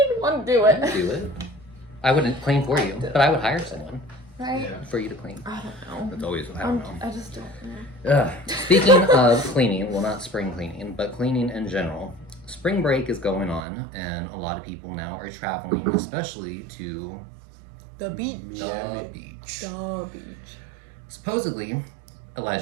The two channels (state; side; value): drops out; left; at 13.7 s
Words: want to do it. Do it. I wouldn't clean for you, but I would hire someone. right? Yeah. for you to clean. I don't know. It's always, I don't know. I just don't know. Speaking of cleaning, well, not spring cleaning, but cleaning in general, spring break is going on, and a lot of people now are traveling, especially to The beach. the beach. The beach. Supposedly,